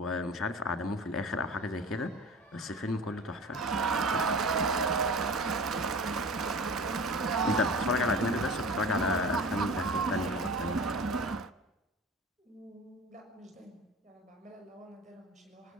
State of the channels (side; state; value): both; normal; correlation 0.37